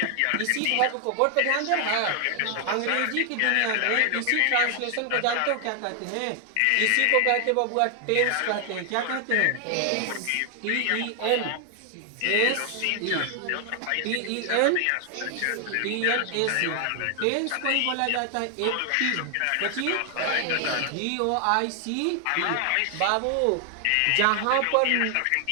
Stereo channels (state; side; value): different; both; correlation 0.00